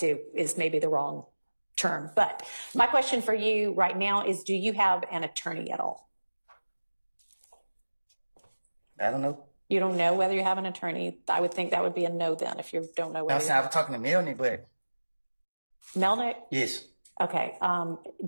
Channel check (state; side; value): inverted; both; correlation -1.00